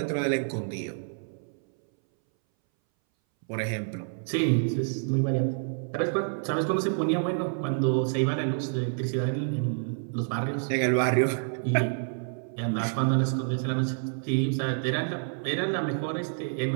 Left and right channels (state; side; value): silent; left; 59 dB below the other